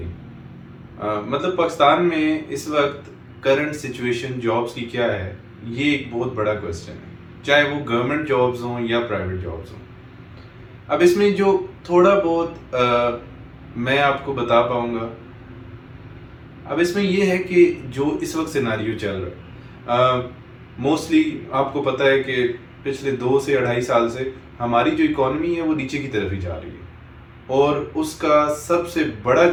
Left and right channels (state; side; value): identical; both; correlation 1.00